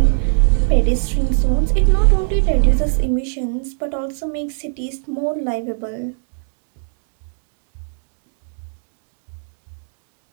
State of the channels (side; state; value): left; silent; 66 dB below the other